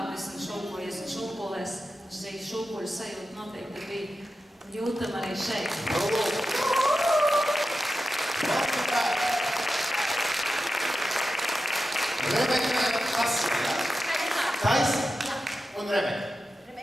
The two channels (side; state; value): both; normal; correlation 0.91